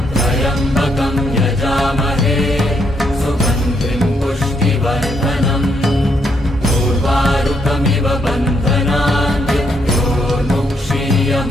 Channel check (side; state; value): both; normal; correlation 0.75